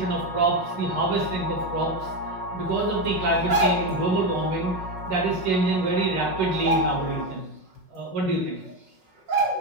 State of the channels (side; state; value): left; late; 5.4 ms